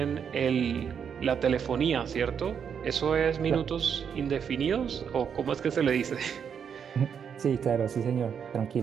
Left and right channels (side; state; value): left; quieter; 7.4 dB